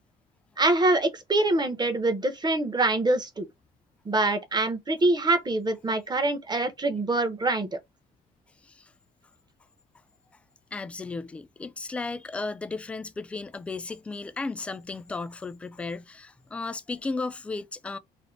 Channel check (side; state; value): both; normal; correlation 0.50